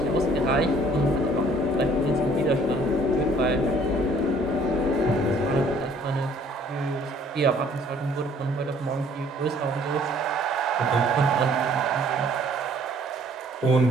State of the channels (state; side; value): normal; both; correlation 0.58